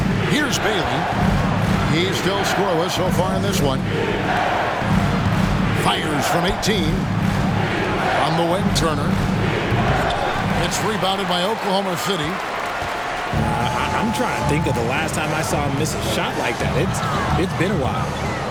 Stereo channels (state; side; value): identical; both; correlation 1.00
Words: Here's Bailey. He's still scoreless so far in this one. Fires from 18. On the wing, Turner. It's rebounded by Oklahoma City. I'm trying to think of the last time I saw him miss a shot like that. It's been a while.